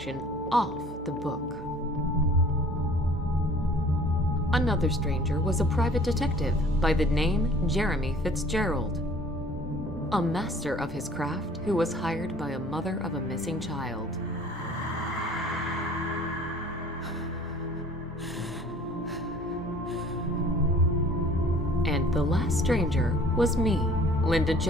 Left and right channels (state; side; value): normal; both; correlation 0.51